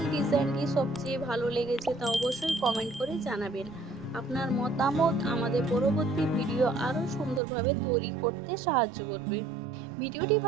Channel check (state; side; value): drops out; left; at 7.4 s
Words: ডিজাইনটি সবচেয়ে ভালো লেগেছে তা অবশ্যই কমেন্ট করে জানাবেন। আপনার মতামত আমাদের পরবর্তী ভিডিও আরও সুন্দরভাবে তৈরি করতে সাহায্য করবে। ভিডিওটি